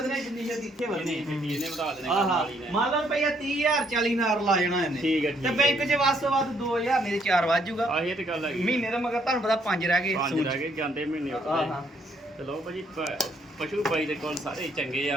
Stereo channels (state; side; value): normal; both; correlation 0.69